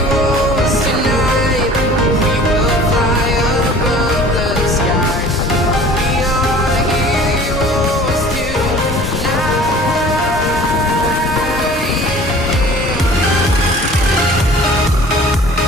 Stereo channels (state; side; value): normal; both; correlation 0.46